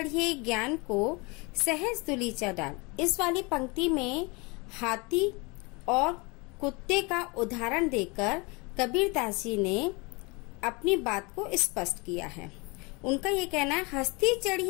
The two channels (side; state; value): right; quieter; 28.0 dB